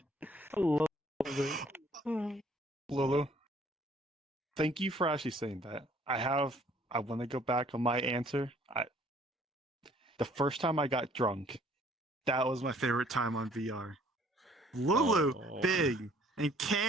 I love it. Lulu, thank you for actually saying that. I want to go back on my answer. The first time I got drunk, that was my favorite time on VR. Lulu, Oh. Big, and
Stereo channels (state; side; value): normal; both; correlation 0.59